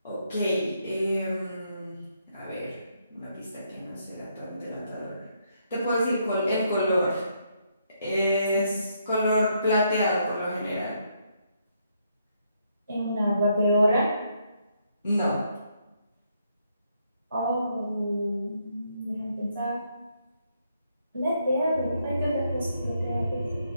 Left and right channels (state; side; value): inverted; both; correlation -0.75